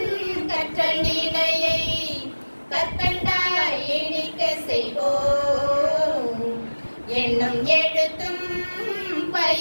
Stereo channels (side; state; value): both; inverted; correlation -1.00